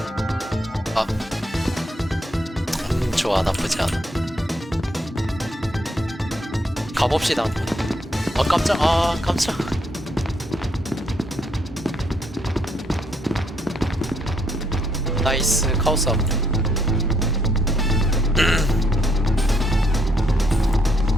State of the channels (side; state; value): both; normal; correlation 0.72